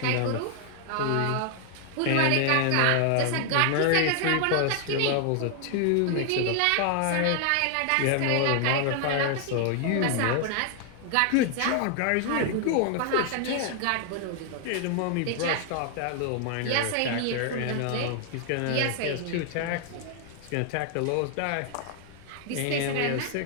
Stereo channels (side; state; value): both; different; correlation 0.00